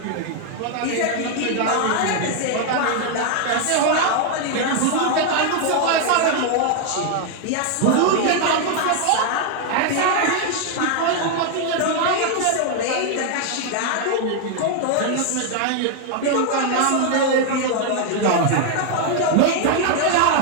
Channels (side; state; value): both; different; correlation 0.00